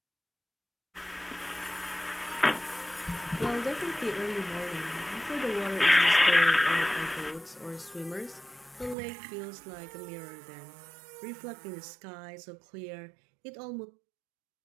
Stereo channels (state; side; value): drops out; left; at 9.0 s